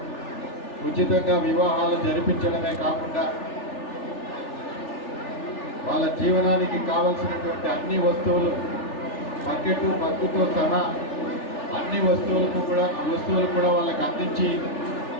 ఉచితంగా వివాహాలు జరిపించడమే కాకుండా వాళ్ళ జీవనానికి కావలసినటువంటి అన్ని వస్తువులు బకెట్ బగ్గుతో సహా అన్ని వస్తువులు కూడా వాళ్ళకి అందించి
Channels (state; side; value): late; right; 3.4 ms